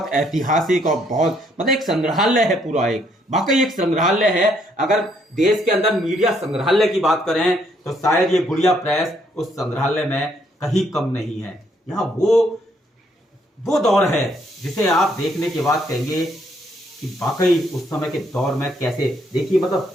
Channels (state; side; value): normal; both; correlation 0.70